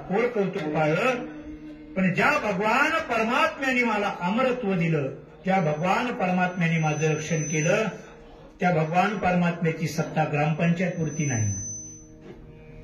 कोर कौतुक पाळलं. पण ज्या भगवान परमात्म्याने मला अमरत्व दिलं, ज्या भगवान परमात्म्याने माझं रक्षण केलं, त्या भगवान परमात्म्याची सत्ता ग्रामपंचायतपुरती नाही,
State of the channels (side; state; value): both; identical; correlation 1.00